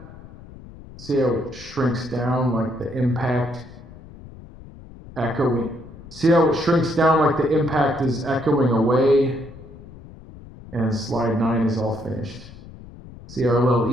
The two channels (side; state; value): left; noise; rumble, 18 dB below the sound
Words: See how it shrinks down like the impact echoing. See how it shrinks down like the impact is echoing away? And slide 9 is all finished. See our